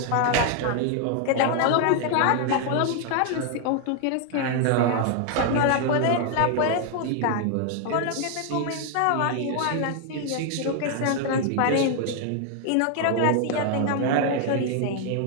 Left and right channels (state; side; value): different; both; correlation 0.00